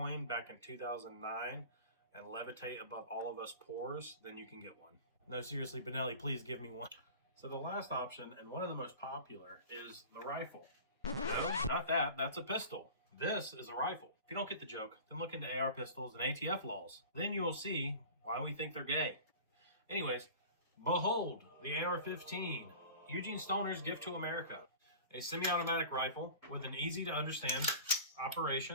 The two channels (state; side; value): inverted; both; correlation -0.38